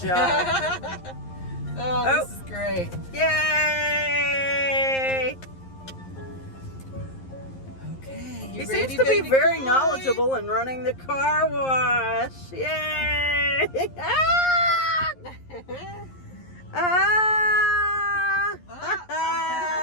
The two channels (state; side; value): late; right; 11 ms